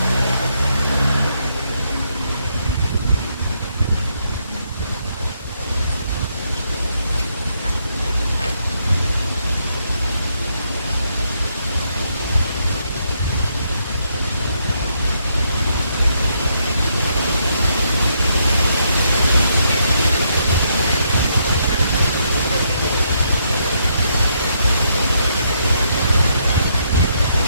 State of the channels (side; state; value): both; inverted; correlation -0.76